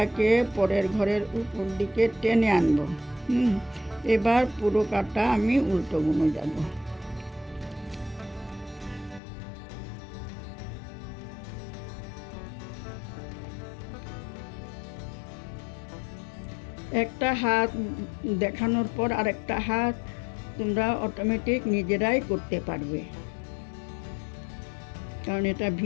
পরের ঘরের উপর দিকে টেনে আনবো। এবার পুরো কাটা আমি উল্টো বুনে যাব। একটা হাত দেখানোর পর আরেকটা হাত তোমরা অটোমেটিক নিজেরাই করতে পারবে, কারণ এটা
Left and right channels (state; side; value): drops out; right; at 9.2 s